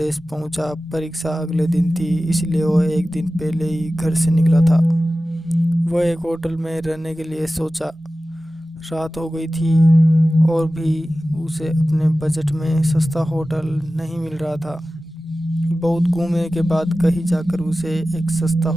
पहुंचा। परीक्षा अगले दिन थी, इसलिए वो एक दिन पहले ही घर से निकला था। वह एक होटल में रहने के लिए सोचा। रात हो गई थी और भी उसे अपने बजट में सस्ता होटल नहीं मिल रहा था। बहुत घूमने के बाद कहीं जाकर उसे एक सस्ता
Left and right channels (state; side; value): normal; both; correlation 0.95